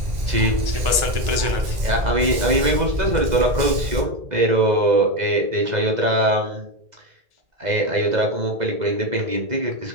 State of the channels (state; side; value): late; left; 2.0 ms